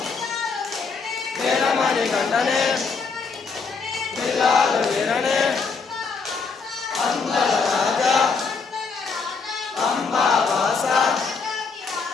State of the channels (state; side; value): quieter; right; 4.9 dB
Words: వీరమణి గంటనే పిల్లాలు వీరనే అందల రాజా అంబావాస